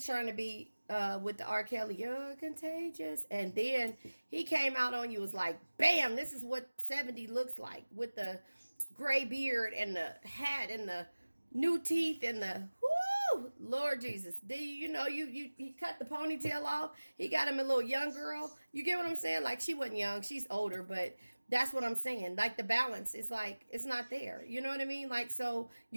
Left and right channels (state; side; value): inverted; both; correlation -1.00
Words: trying to be with the R. Kelly, you're contagious, and then he came out on you, was like, bam, this is what 70 looks like, with the gray beard and the hat and the new teeth and the whoo, Lord Jesus. You cut the ponytail off. He got him a little young girl. You get what I'm saying? Like, she wasn't young, she's older, but that's what I'm saying. Like, the balance is like, it's not there. You know what I mean? Like, so